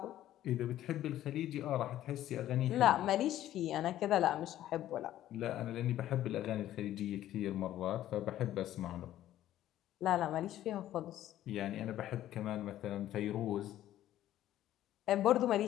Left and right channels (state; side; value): quieter; right; 13.0 dB